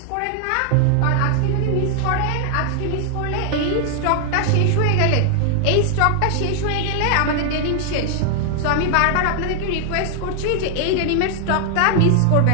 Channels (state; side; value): different; both; correlation 0.00